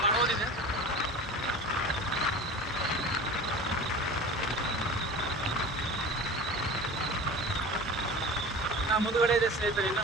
ಮಾಡೋದಿದೆ. ಮುಂದುಗಡೆ ಇದೆ ಸ್ನೇಹಿತರೆ. ಇನ್ನು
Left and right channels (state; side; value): normal; both; correlation 0.35